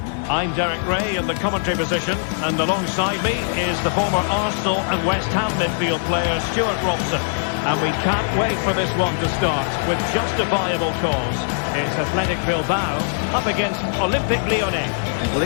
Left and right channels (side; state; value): right; silent; digital silence